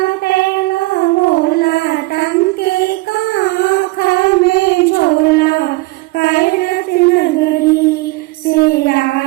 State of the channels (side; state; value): left; quieter; 21.8 dB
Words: पहला भोला टंके काखा में झोला, कैलाश नगरी से